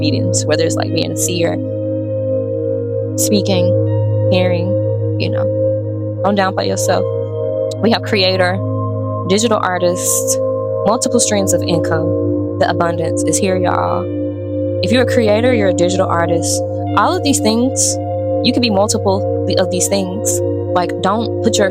whether it's like being a seer, speaking, hearing, you know. Don't downplay yourself. We have creator, digital artist, multiple streams of income. The abundance is here, y'all. If you're a creator, you're a digital artist. All of these things, you can be multiple of these things. Like, don't put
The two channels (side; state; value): both; identical; correlation 1.00